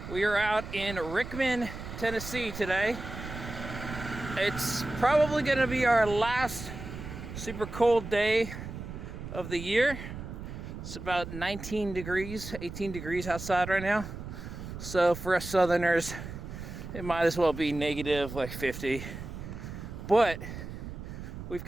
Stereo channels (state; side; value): noise; right; rumble, 9 dB below the sound